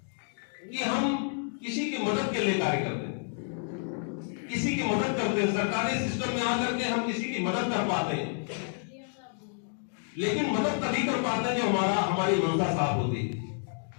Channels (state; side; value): silent; right; 58 dB below the other